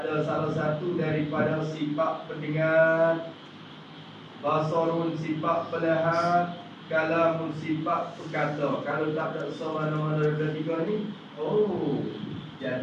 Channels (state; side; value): identical; both; correlation 1.00